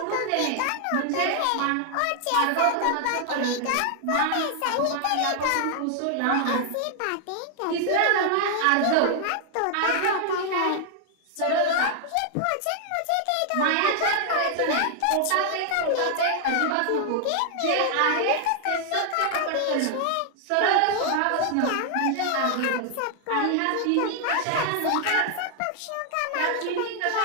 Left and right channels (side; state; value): both; different; correlation 0.00